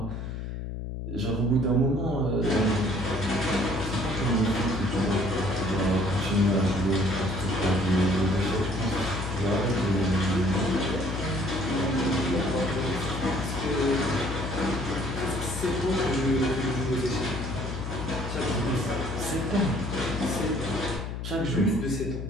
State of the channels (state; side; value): noise; left; hum, 6 dB below the sound